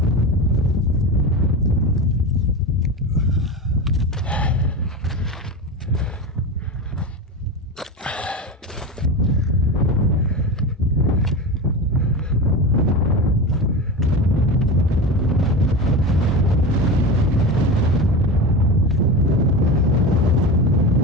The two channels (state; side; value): normal; both; correlation 0.24